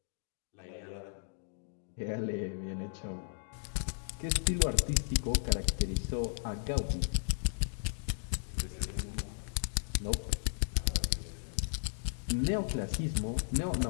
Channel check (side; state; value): right; silent; digital silence